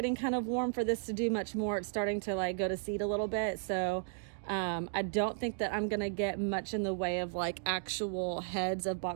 kind of warm for this to do much more. It's starting to like go to seed a little bit. So I don't think that I'm gonna get much in the way of like actual heads of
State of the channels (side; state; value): left; silent; digital silence